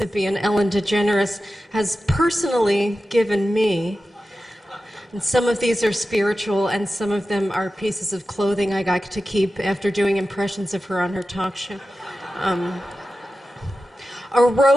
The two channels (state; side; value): normal; both; correlation 0.93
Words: Ellen DeGeneres, has personally given me. And some of these are spiritual, and some of them are pieces of clothing I got to keep after doing impressions of her on her talk show. A